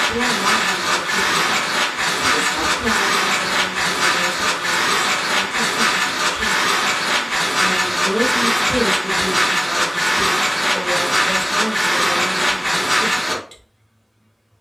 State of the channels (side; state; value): both; identical; correlation 1.00